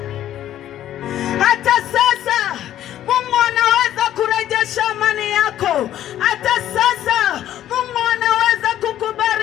Hata sasa Mungu anaweza kurejesha amani yako. Hata sasa Mungu anaweza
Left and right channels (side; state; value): right; quieter; 12.0 dB